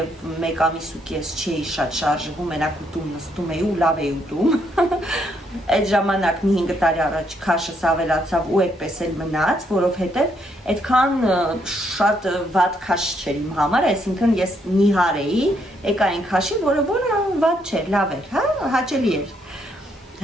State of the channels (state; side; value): normal; both; correlation 0.73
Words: 1 ամիս ու կես չէի շատ շարժվում, մենակ ուտում նստում էի ու լավ էի ուտում։ Այդ ժամանակ մի 5 տարի առաջ քաշս ավելացավ ու այդպես էլ մնաց, որովհետեւ այդքան շատ վատ քաշ չէր իմ համար, այսինքն ես նիհար էի, եկա այն քաշի, որը վատ չէր, լավ էր, հա, հաճելի էր։